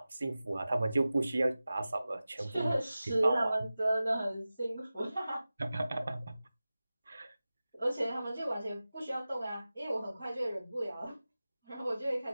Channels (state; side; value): inverted; both; correlation -0.96